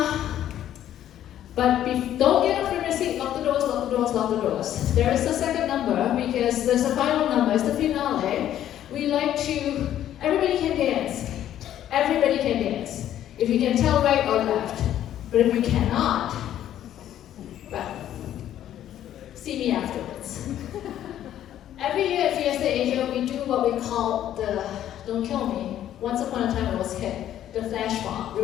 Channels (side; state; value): right; quieter; 11.5 dB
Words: But don't get up from your seat, lock the doors, lock the doors, lock the doors. There is a second number, because there's a final number, it's the finale. We like to, everybody can dance. Everybody can dance. If you can tell right or left. But if you cannot, well, see me afterwards. Every year at Fiesta Asia, we do what we call the, don't kill me, once upon a time it was hip, the flash mob.